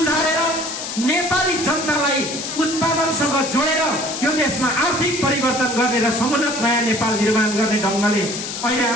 नेपाली जनतालाई उत्पादनसँग जोडेर यो देशमा आर्थिक परिवर्तन गर्ने र समुन्नत नयाँ नेपाल निर्माण गर्ने ढंगले अहिले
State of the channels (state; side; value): noise; left; hiss, 6 dB below the sound